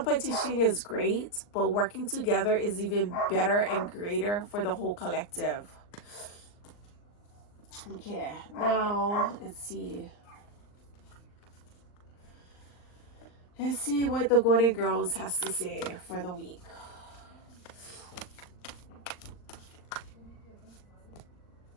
is great, but working together is even better and greater for the whole collective. Okay, now let's see what the Golden Girls has to say for the week.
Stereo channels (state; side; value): late; right; 39 ms